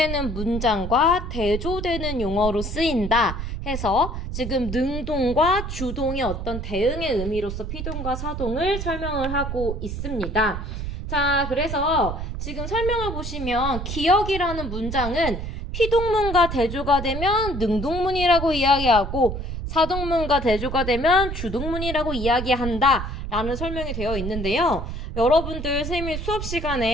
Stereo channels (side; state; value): right; noise; rumble, 5 dB below the sound